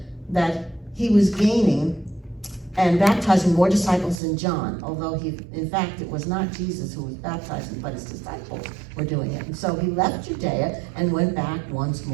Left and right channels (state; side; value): drops out; left; at 4.2 s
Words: that he was gaining and baptizing more disciples than John, although in fact, it was not Jesus who was baptizing, but his disciples were doing it. And so he left Judea and went back once